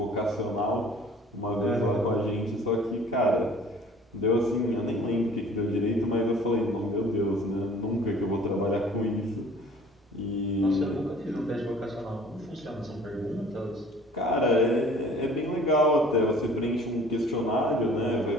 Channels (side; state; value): both; normal; correlation 0.50